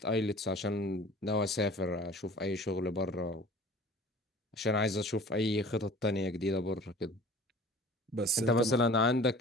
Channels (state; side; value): normal; both; correlation 0.45